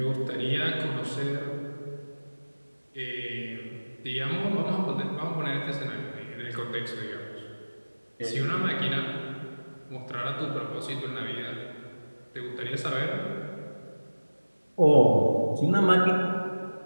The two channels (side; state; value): both; inverted; correlation -1.00